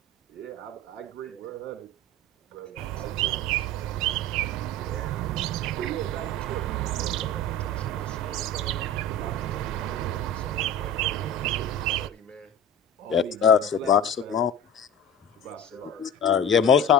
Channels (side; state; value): both; normal; correlation 0.33